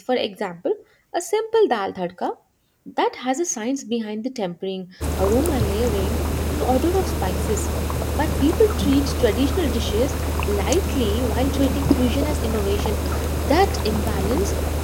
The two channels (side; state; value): both; identical; correlation 1.00